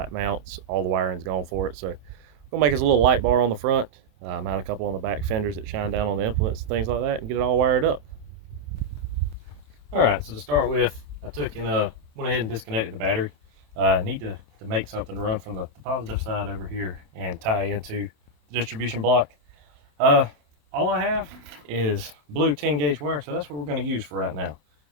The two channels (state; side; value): late; left; 27 ms